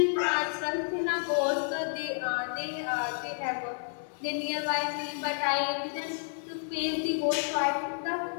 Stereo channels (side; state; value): right; silent; 58 dB below the other